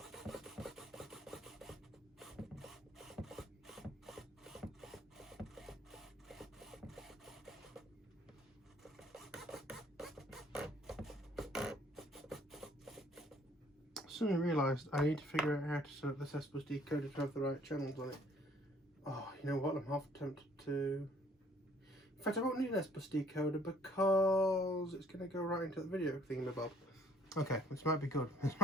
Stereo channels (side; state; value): both; normal; correlation 0.60